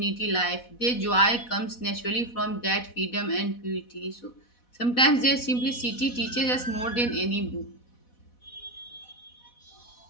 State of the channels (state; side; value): late; right; 4.1 ms